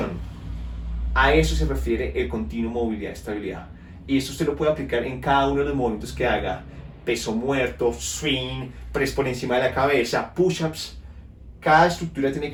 A eso se refiere el continuo movilidad y estabilidad. Y esto usted lo puede aplicar en cada uno de los movimientos que haga. Peso muerto, swing, press por encima de la cabeza, push-ups. Cada estructura tiene que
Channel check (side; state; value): both; identical; correlation 1.00